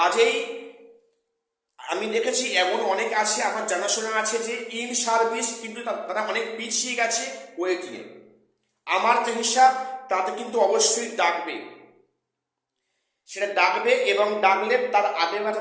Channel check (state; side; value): identical; both; correlation 1.00